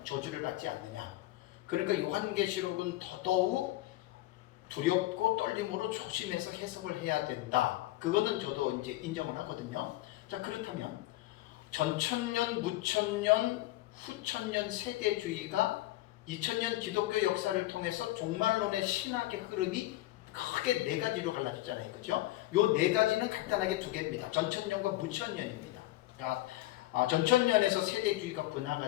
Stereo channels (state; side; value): quieter; right; 17.0 dB